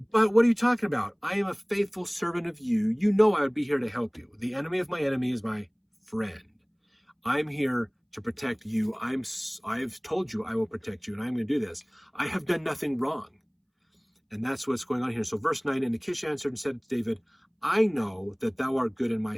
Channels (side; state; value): both; identical; correlation 1.00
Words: but what are you talking about? I am a faithful servant of you. You know I would be here to help you. The enemy of my enemy is my friend. I'm here to protect you. I've told you I will protect you, and I'm going to do this. I have done nothing wrong. And that's what's going on here. So verse 9, and Achish answered and said to David, I know that thou art good in my